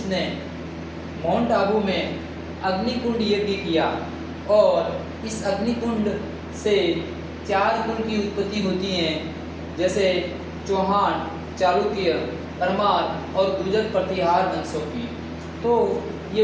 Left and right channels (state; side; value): identical; both; correlation 1.00